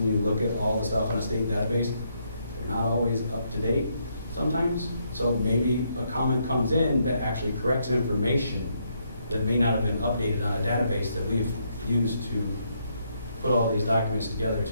you look at all the stuff in a state database, they're not always up to date sometimes. So maybe a comment comes in that actually corrects information that may not have been updated on a database that we've used to put all these documents together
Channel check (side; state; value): both; inverted; correlation -0.75